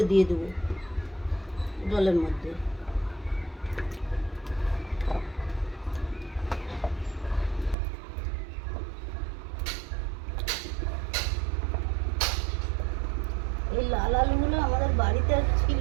দিয়ে দেবো জলের মধ্যে। এই লাল আলুগুলো আমাদের বাড়িতে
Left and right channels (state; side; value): drops out; left; at 7.8 s